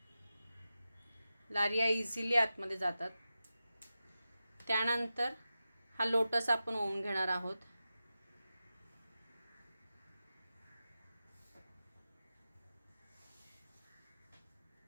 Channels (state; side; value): inverted; both; correlation -0.93